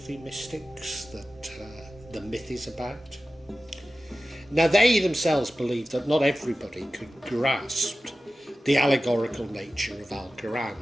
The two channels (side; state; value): both; normal; correlation 0.94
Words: mystics that the myth is about? Now, they themselves believe that not everybody could grasp the allegorical nature of